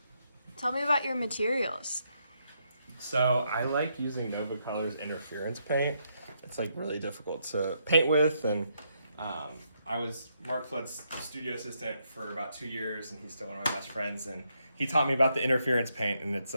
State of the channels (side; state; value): both; inverted; correlation -0.78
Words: Tell me about your materials. So I like using Nova Colors interference paint. It's like really difficult to paint with, and I was Mark Flood's studio assistant for about 2 years, and he's still one of my best friends, and he taught me about the interference paint, and it's